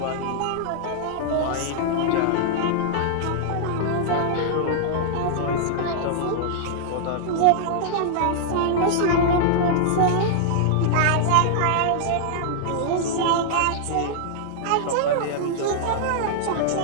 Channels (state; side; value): different; both; correlation -0.01